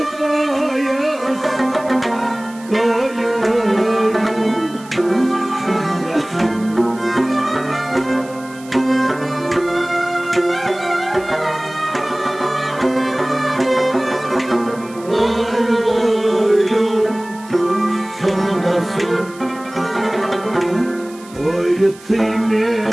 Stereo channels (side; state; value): right; noise; hiss, 21 dB below the sound